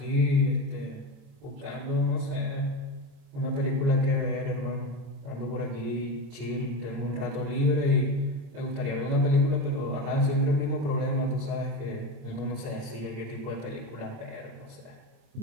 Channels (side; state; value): left; late; 27 ms